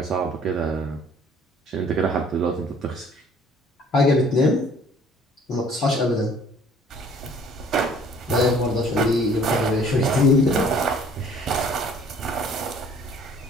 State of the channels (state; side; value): normal; both; correlation 0.55